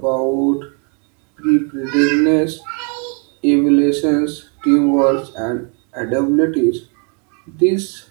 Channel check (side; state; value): left; quieter; 37.1 dB